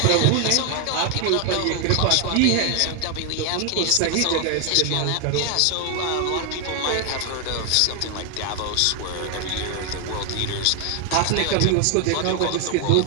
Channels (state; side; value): different; both; correlation 0.00